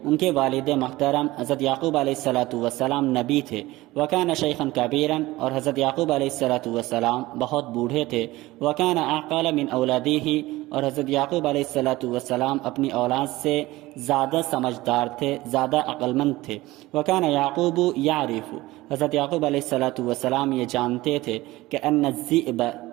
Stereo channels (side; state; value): left; quieter; 18.7 dB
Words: ان کے والد محترم حضرت یعقوب علیہ السلام نبی تھے۔ وکان شیخا کبیرا اور حضرت یعقوب علیہ السلام بہت بوڑھے تھے۔ وکان اعقل من اولادہ اور حضرت یعقوب علیہ السلام اپنی اولاد سے زیادہ سمجھدار تھے، زیادہ عقل مند تھے۔ وکان یعقوب یعرف، حضرت یعقوب علیہ السلام یہ جانتے تھے کہ ان الذئب